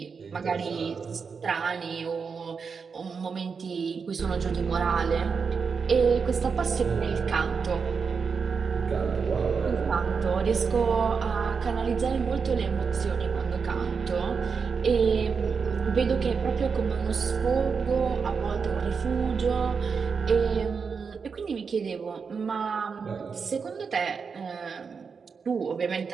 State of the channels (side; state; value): left; quieter; 5.6 dB